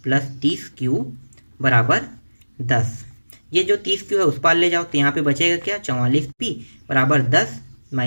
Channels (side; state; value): both; inverted; correlation -1.00